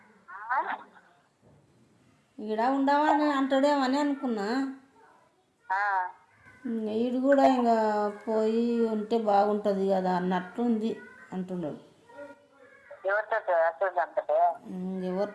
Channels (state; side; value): identical; both; correlation 1.00